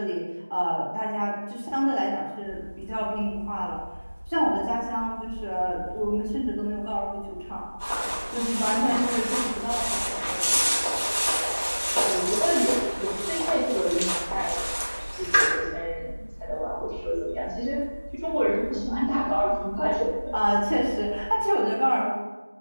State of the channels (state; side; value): inverted; both; correlation -1.00